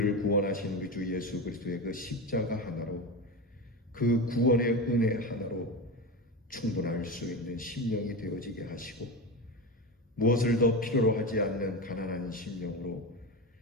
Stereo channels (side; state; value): both; normal; correlation 0.21